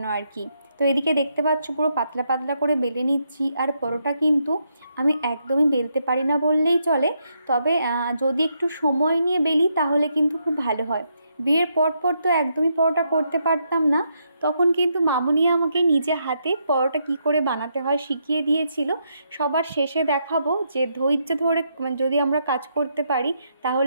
আর কি। তো এদিকে দেখতে পাচ্ছ পুরো পাতলা পাতলা করে বেলে নিচ্ছি। আর পরোটা কিন্তু আমি একদমই বেলতে পারি না বললেই চলে, তবে যদি একটু সময় নিয়ে বেলি তাহলে কিন্তু খুব ভালো হয়। বিয়ের পর তো একদমই পরোটা করতে পারতাম না, তখন কিন্তু মামুনি আমাকে নিজে হাতে পরোটা কি করে বানাতে হয় শিখিয়ে দিয়েছিল। সবার শেষে দেখাবো যে ধৈর্য ধরে যদি আমরা কাজ করতে পারি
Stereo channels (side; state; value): both; inverted; correlation -0.78